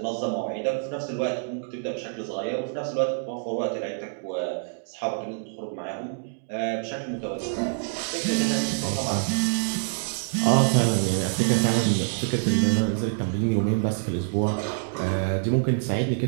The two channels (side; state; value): left; silent; digital silence